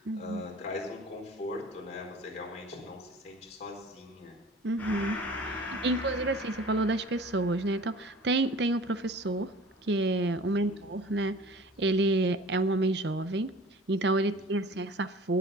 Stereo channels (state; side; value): normal; both; correlation 0.45